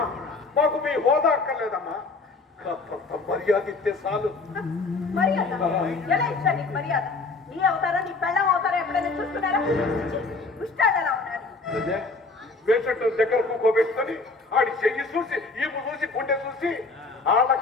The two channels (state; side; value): quieter; right; 3.7 dB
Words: మాకు మీ హోదా అక్కర్లేదమ్మా. కాస్తంత మర్యాద ఇస్తే చాలు. మర్యాద ఎలా ఇచ్చా నీకు మర్యాద? నీ అవతారం, నీ పెళ్ళం అవతారం ఎప్పుడైనా చూస్తున్నారా? ముష్టాడు ఎలా ఉన్నారు? అదే పేషెంట్ దగ్గర కూకోబెట్టుకొని ఆడి చెయ్యి చూసి, ఈపు చూసి, గుండె చూసి, ఆళ్ళ